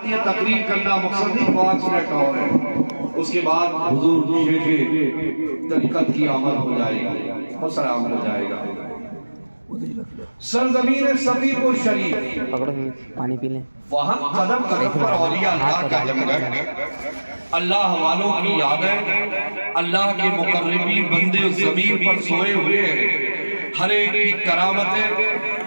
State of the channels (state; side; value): inverted; both; correlation -1.00